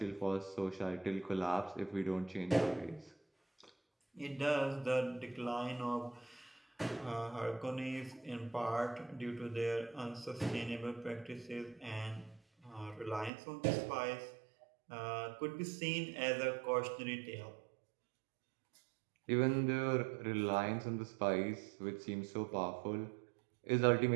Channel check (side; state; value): left; drops out; at 13.3 s